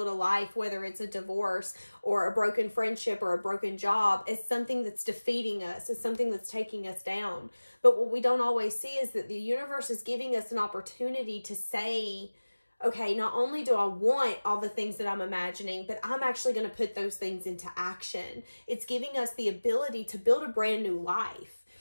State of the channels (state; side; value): inverted; both; correlation -1.00